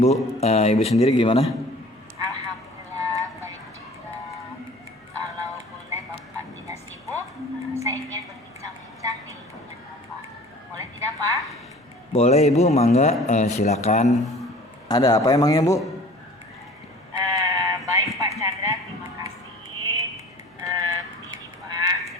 Ibu sendiri gimana? Alhamdulillah baik juga. Kalau boleh Bapak tidak sibuk, saya ingin berbincang-bincang nih dengan Bapak. Boleh tidak, Pak? Boleh Ibu, mangga. Silakan. Ada apa emangnya Bu? Baik Pak Chandra, terima kasih. Begini Pak,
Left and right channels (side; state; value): both; normal; correlation 0.46